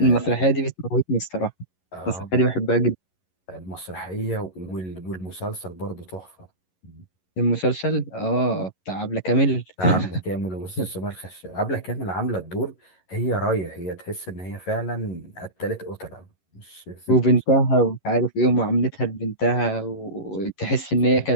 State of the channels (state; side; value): late; right; 11 ms